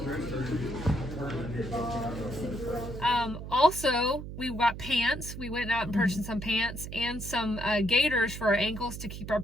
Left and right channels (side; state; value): right; noise; hum, 9 dB below the sound